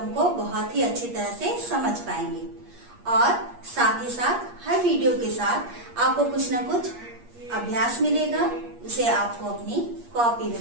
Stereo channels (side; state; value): left; late; 8.5 ms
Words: को बहुत ही अच्छी तरह से समझ पाएंगे। और साथ ही साथ हर वीडियो के साथ आपको कुछ न कुछ अभ्यास मिलेगा, उसे आपको अपनी कॉपी